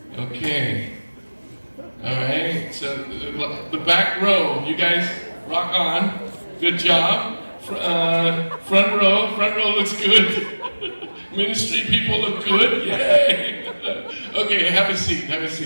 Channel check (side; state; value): both; inverted; correlation -1.00